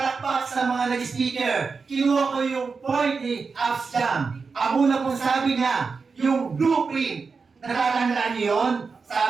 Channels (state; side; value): quieter; left; 4.8 dB